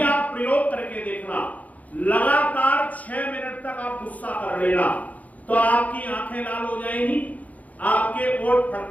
आप प्रयोग करके देखना, लगातार 6 मिनट तक आप गुस्सा कर लेना, तो आपकी आंखें लाल हो जाएंगी, आपके ओठ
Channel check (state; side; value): late; right; 0.074 ms